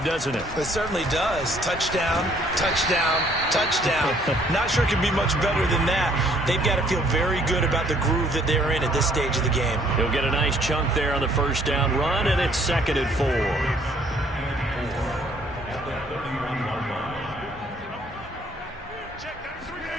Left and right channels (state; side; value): normal; both; correlation 0.62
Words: doesn't it? It certainly does. Touchdown, touchdown, touchdown. Not sure it can be much better than that. They've got to feel very good about the groove that they're in at this stage of the game. He'll get a nice chunk there on the first down run, and it's 2nd and 4.